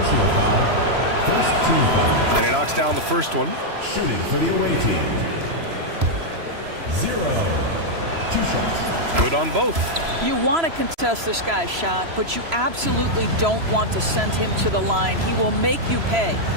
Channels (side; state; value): left; late; 3.0 ms